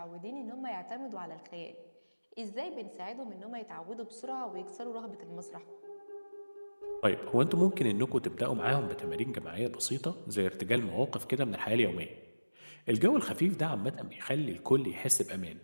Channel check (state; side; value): inverted; both; correlation -1.00